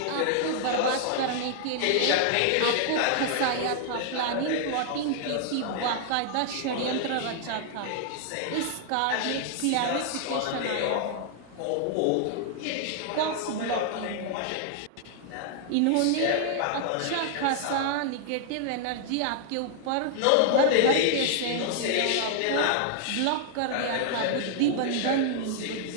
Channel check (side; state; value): both; different; correlation -0.01